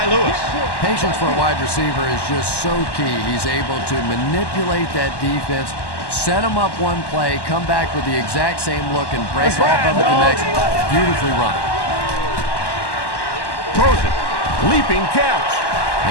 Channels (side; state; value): right; late; 1.1 ms